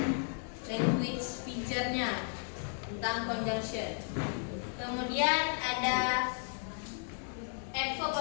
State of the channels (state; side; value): silent; right; 55 dB below the other